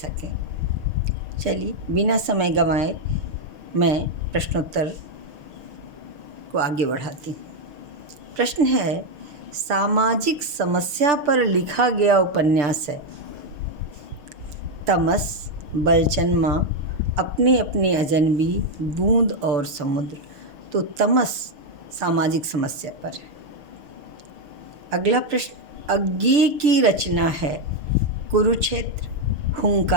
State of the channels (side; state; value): left; late; 6.4 ms